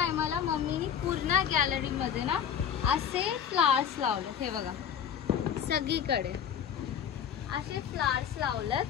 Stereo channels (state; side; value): quieter; right; 8.6 dB